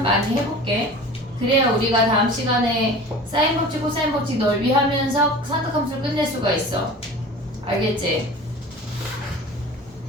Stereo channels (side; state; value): both; normal; correlation 0.39